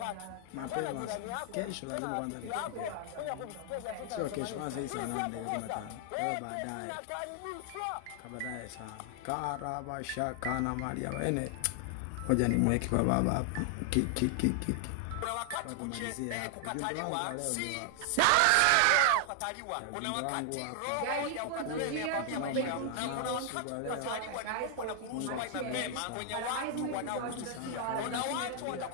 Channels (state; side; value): different; both; correlation 0.00